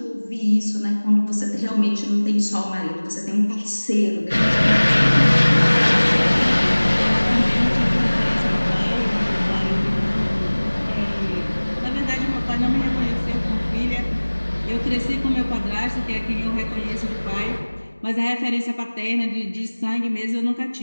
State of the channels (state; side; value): inverted; both; correlation -1.00